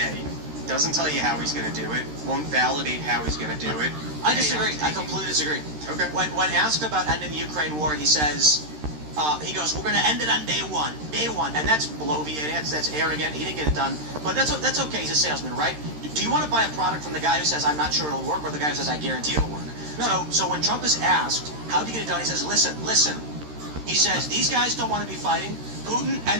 Doesn't tell you how he's going to do it. Won't validate how he's going to do it. I disagree. I completely disagree. Okay. When asked about ending the Ukraine war, he says, he goes, we're going to end it on day one. And that's bloviating, that's arrogant. He didn't get it done. But that's okay. He's a salesman, right? Do you want to buy a product from the guy who says, I'm not sure it'll work, or the guy who says, I guarantee it'll work? No. So when Trump is asked, how do you get it done? He says, listen. He says, these guys don't want to be fighting. Putin and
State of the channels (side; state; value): left; late; 13 ms